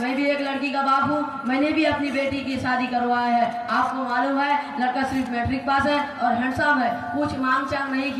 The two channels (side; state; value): both; identical; correlation 1.00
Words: भी एक लड़की का बाप हूँ, मैंने भी अपनी बेटी की शादी करवाया है। आपको मालूम है लड़का सिर्फ मैट्रिक पास है और हैंडसम है, कुछ मांग चांग नहीं